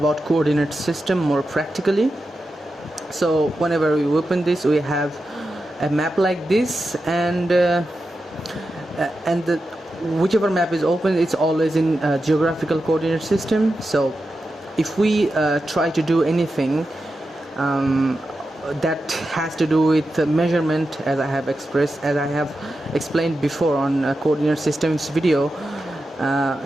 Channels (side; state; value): both; normal; correlation 0.90